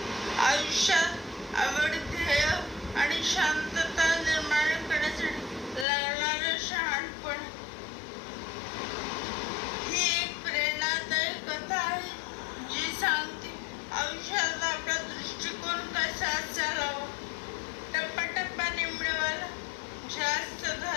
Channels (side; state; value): right; drops out; at 5.9 s